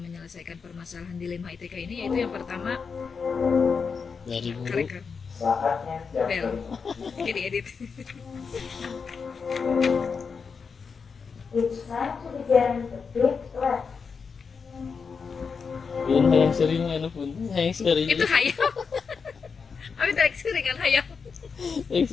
permasalahan dilema etika ini yaitu yang pertama Dari guru, rekan bel, ini diedit. It's time to begin the big lesson. yun yang sering ano pun, yang sering, Itu hayam. Abi tarik sering kan hayam. yang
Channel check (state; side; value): quieter; right; 5.5 dB